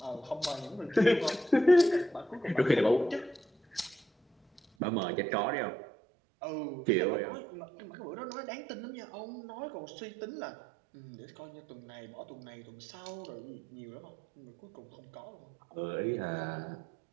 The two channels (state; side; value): drops out; left; at 4.6 s